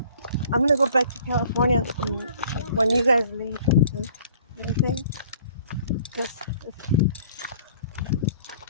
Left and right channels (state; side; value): inverted; both; correlation -0.53